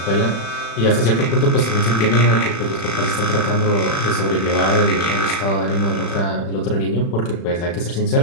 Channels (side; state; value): right; late; 36 ms